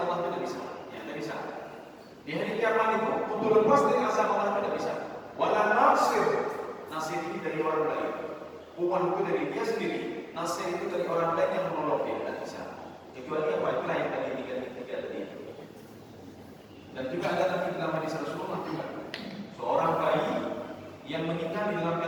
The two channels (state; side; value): identical; both; correlation 1.00